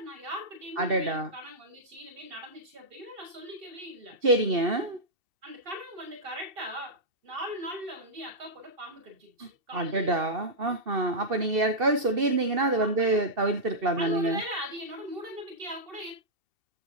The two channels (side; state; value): left; late; 2.7 ms